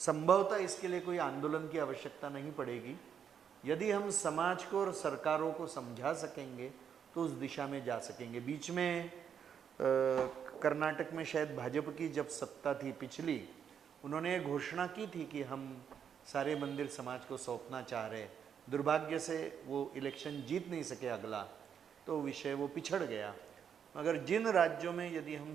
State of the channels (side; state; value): left; quieter; 7.9 dB